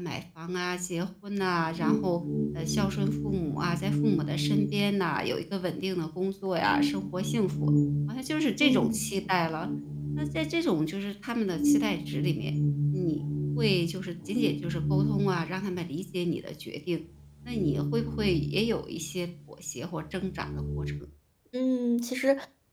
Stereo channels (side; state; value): both; identical; correlation 1.00